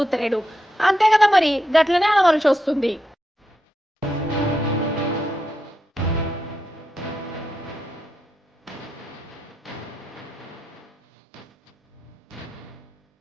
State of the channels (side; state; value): both; normal; correlation 0.85